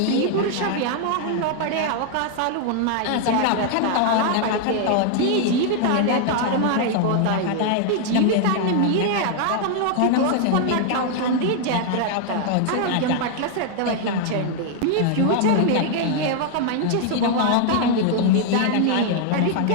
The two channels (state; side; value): different; both; correlation 0.00